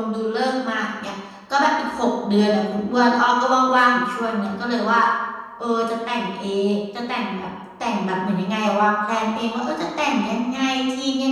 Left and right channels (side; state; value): both; identical; correlation 1.00